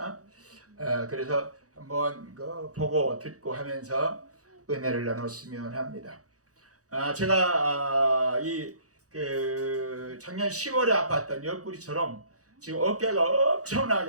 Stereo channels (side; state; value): left; late; 0.66 ms